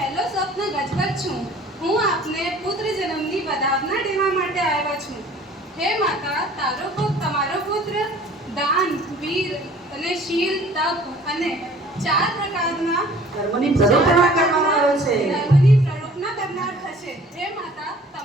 સ્વપ્ન ગજગજ છું. હું આપને પુત્ર જન્મની વધાવના દેવા માટે આવ્યો છું. હે માતા, તારો તમારો પુત્ર દાન, વીર અને શીલ, તપ અને 4 પ્રકારના ધર્મની પ્રરોપણા કરવામાં આવે છે. ધર્મની પ્રરોપણા કરનાર થશે. હે માતા,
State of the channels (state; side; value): normal; both; correlation 0.51